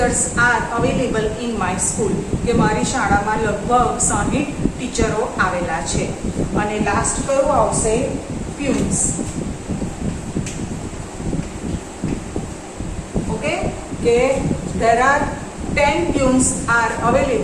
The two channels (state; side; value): identical; both; correlation 1.00